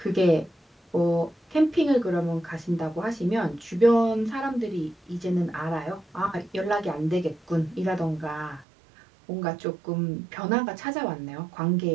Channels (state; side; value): drops out; left; at 8.7 s